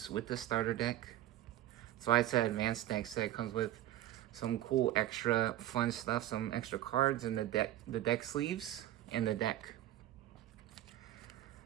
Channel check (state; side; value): quieter; left; 13.7 dB